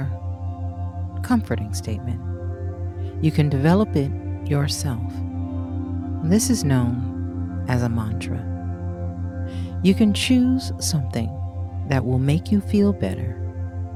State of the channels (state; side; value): identical; both; correlation 1.00